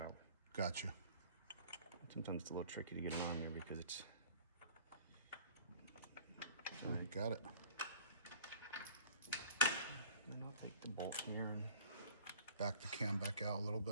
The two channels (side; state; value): both; inverted; correlation -0.46